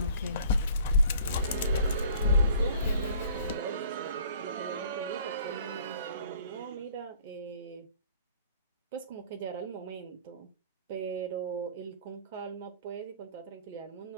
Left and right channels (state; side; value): inverted; both; correlation -0.53